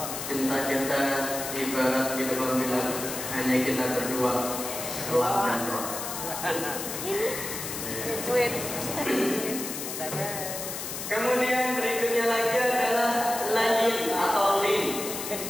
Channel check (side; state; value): left; noise; hiss, 6 dB below the sound